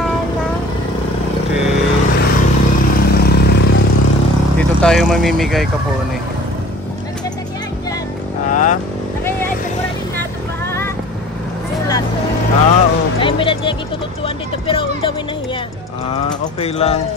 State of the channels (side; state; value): both; normal; correlation 0.46